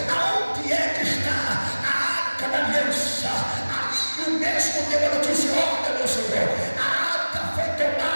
mesmo deu a notícia: olha, meu Senhor, a arca foi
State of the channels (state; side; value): inverted; both; correlation -1.00